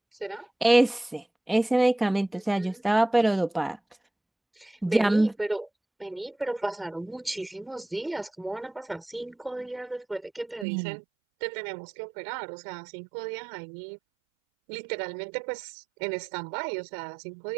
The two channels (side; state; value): left; drops out; at 10.7 s